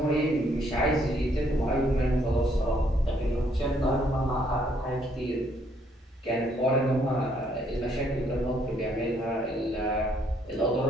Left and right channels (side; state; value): both; normal; correlation 0.68